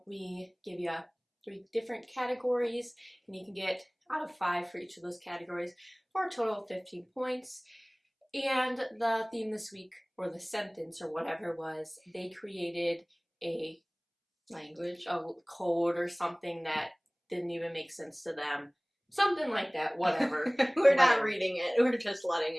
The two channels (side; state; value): both; identical; correlation 1.00